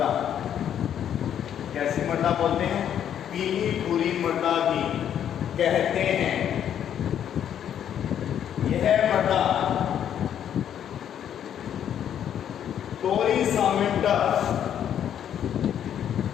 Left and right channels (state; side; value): quieter; right; 9.6 dB